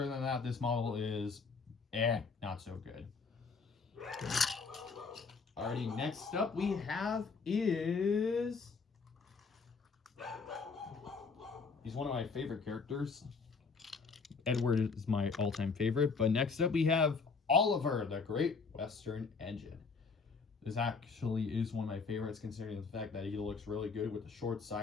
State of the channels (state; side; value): quieter; right; 4.8 dB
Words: than that, this model is, not so good. Alrighty, next up we have is... He's one of my favorite characters. Edward is my all-time favorite, but next up we have Oliver, the Great Western Engine. This actually is one of my favorites considering the fact that he looks really good with the short